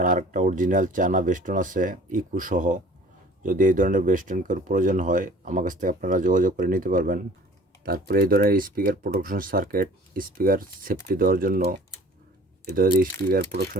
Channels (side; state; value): both; normal; correlation 0.48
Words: আরেকটা অরিজিনাল চায়না বেস্টন আছে ইকু সহ, যদি এই ধরনের বেস্টন কেউ প্রয়োজন হয় আমার কাছ থেকে আপনারা যোগাযোগ করে নিতে পারবেন। তারপরে এই ধরনের speaker protection circuit, speaker safety দেওয়ার জন্য এই ধরনের স্পিকার